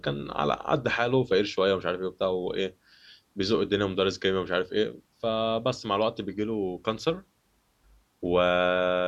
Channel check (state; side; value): identical; both; correlation 1.00